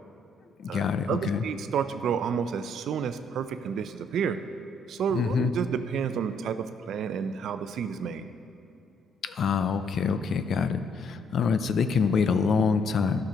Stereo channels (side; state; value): both; normal; correlation 0.68